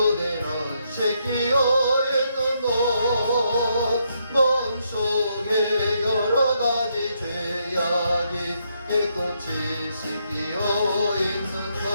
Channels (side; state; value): both; inverted; correlation -0.77